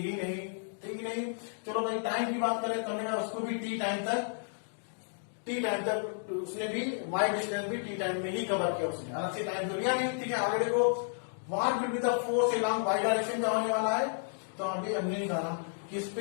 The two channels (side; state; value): right; silent; digital silence